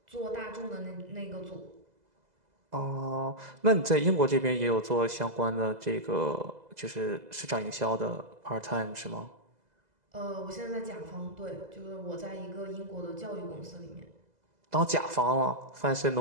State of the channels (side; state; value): left; late; 2.0 ms